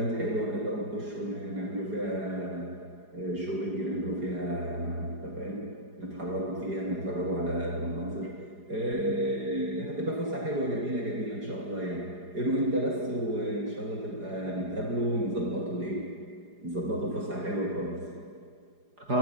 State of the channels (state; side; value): late; left; 4.9 ms